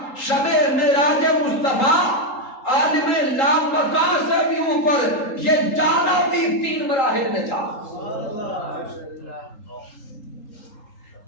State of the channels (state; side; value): late; right; 3.8 ms